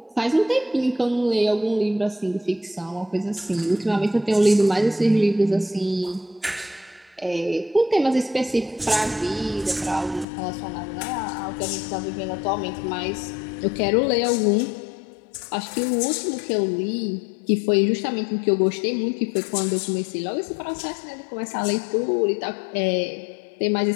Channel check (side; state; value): right; drops out; at 10.2 s